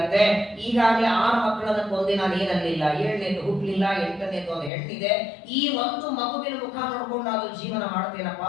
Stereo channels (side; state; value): right; drops out; at 4.7 s